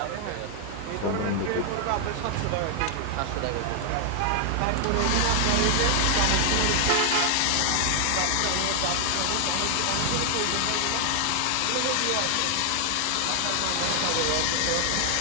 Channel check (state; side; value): different; both; correlation 0.00